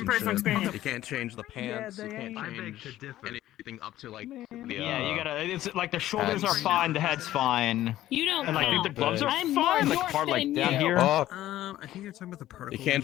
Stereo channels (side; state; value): right; quieter; 14.0 dB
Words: personal experience. You can't change the pants. You can't change anything up to like the. Yeah, you gotta. It's like the shoulders are fine, the head's fine. You don't. And like count. the gloves are I'm fine. more Like part like than down you. here. I think you're talking about the particle. You can't